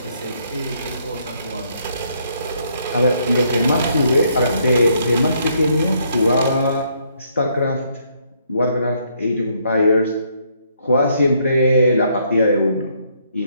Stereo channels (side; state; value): both; inverted; correlation -0.70